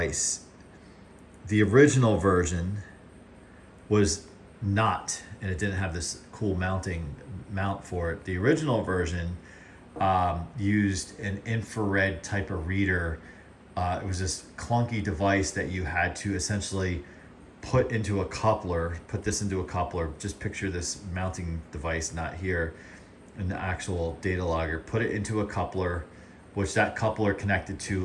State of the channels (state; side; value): identical; both; correlation 1.00